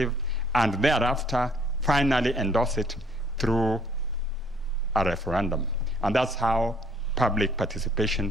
and thereafter finally endorse it through a referendum. And that's how public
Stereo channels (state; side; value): normal; both; correlation 0.62